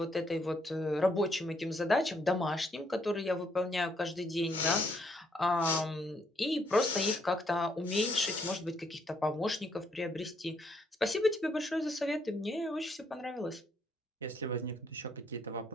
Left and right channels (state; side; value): normal; both; correlation 0.72